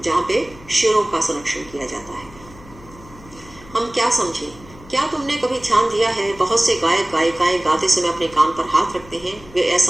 जहाँ पे शेरों का संरक्षण किया जाता है। हम क्या समझे? क्या तुमने कभी ध्यान दिया है बहुत से गायक गायिकाएं गाते समय अपने कान पर हाथ रखते हैं? वे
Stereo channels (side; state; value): left; noise; hum, 21 dB below the sound